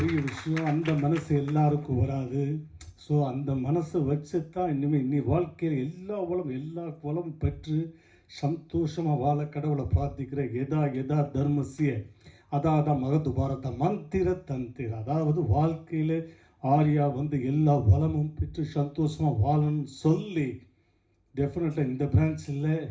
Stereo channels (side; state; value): both; identical; correlation 1.00